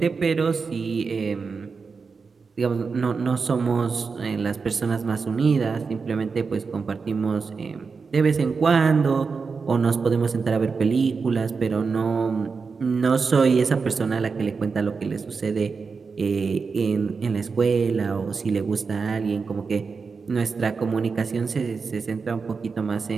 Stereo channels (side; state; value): left; quieter; 5.0 dB